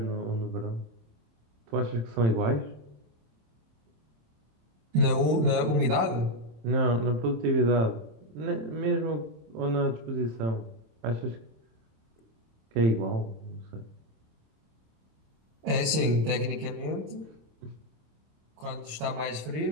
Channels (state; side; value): late; left; 26 ms